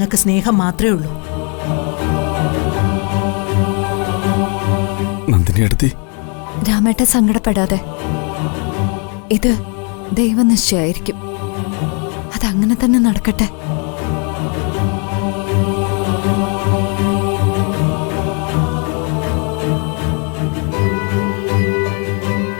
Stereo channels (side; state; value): right; quieter; 37.3 dB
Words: സ്നേഹം മാത്രമേ ഉള്ളൂ. നന്ദിനിയെടുത്തി, രാമേട്ട സങ്കടപ്പെടാതെ. ഇത് ദൈവനിശ്ചയായിരിക്കും. അതങ്ങനെ തന്നെ നടക്കട്ടെ.